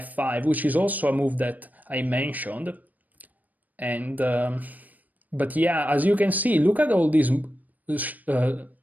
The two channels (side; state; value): left; late; 0.080 ms